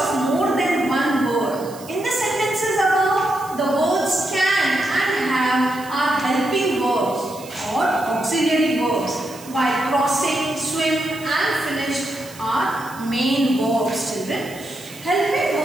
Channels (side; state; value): right; noise; hiss, 19 dB below the sound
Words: more than one word. In the sentences above, the words can and have are helping verbs or auxiliary verbs, while crossing, swim and finished are main verbs, children. Helping